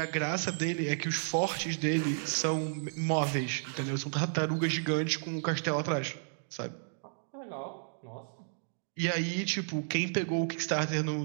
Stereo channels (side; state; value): left; silent; digital silence